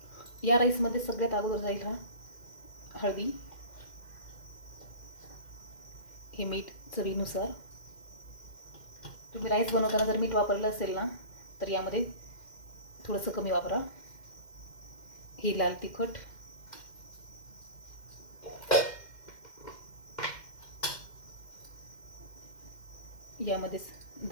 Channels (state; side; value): late; right; 2.1 ms